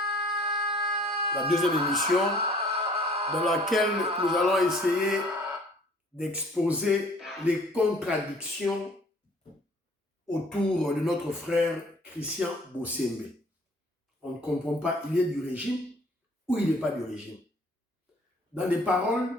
La deuxième émission, dans laquelle nous allons essayer d'exposer les contradictions autour de notre frère Christian Bossembe. On ne comprend pas, il est du régime ou il n'est pas du régime. Dans les paroles,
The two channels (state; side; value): normal; both; correlation 0.54